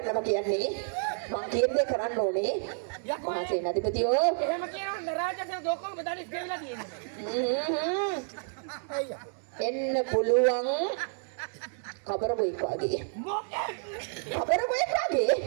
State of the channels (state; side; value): silent; left; 58 dB below the other